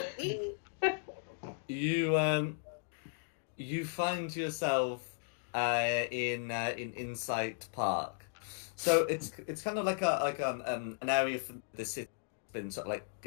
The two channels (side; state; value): right; silent; digital silence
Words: You find yourself in Insight Park. So it's kind of like an area for the city that's been sort of like